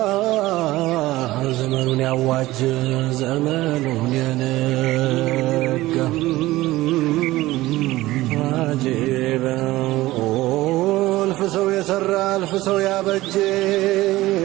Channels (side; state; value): left; quieter; 17.6 dB